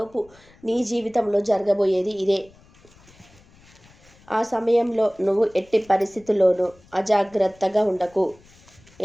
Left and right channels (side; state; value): left; noise; rumble, 27 dB below the sound